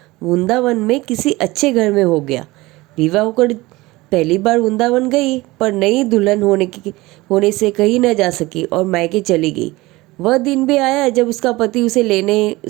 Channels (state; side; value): quieter; left; 20.6 dB